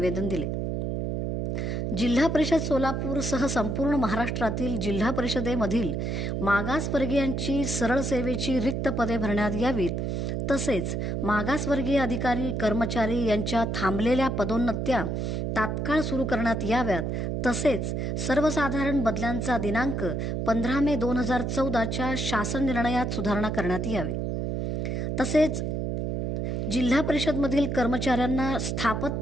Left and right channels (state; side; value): noise; right; hum, 1 dB below the sound